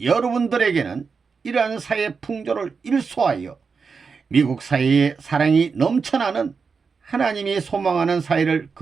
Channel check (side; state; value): left; quieter; 5.3 dB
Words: 여러분들에게는 이러한 사회 풍조를 일소하여 미국 사회에 사랑이 넘쳐나는 하나님이 소망하는 사회를